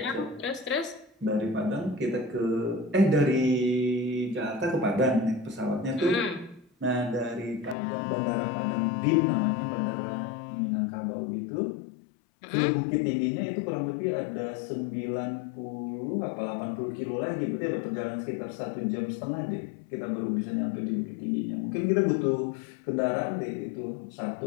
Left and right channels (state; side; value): drops out; right; at 7.8 s